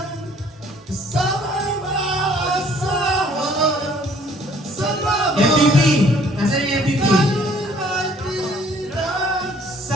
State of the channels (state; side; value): normal; both; correlation 0.59